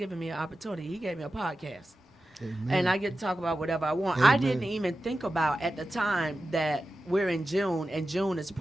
me an opportunity. He gave me a podcast. Amen. And I get to talk about whatever I want. Amen. I didn't even think about at the time that we're in June, and June is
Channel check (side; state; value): both; normal; correlation 0.93